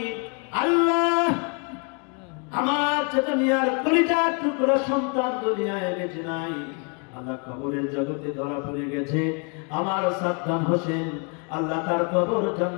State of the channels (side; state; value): right; quieter; 37.0 dB